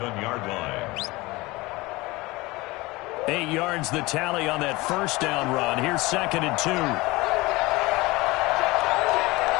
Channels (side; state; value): right; quieter; 21.8 dB